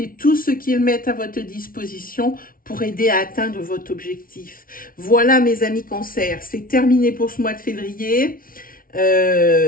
tout ce qu'ils mettent à votre disposition pour aider à atteindre votre objectif. Voilà mes amis Cancer, c'est terminé pour ce mois de février.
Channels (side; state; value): right; late; 0.42 ms